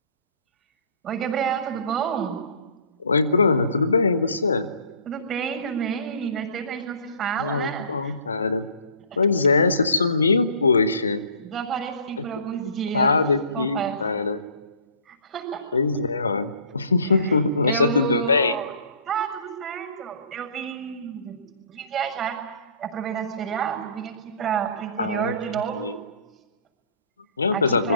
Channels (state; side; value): inverted; both; correlation -0.53